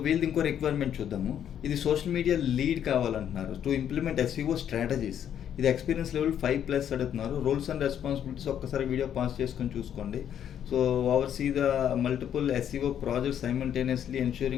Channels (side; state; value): right; quieter; 9.6 dB